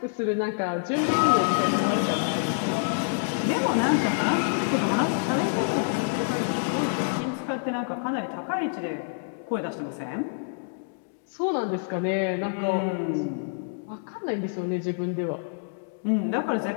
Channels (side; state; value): right; silent; digital silence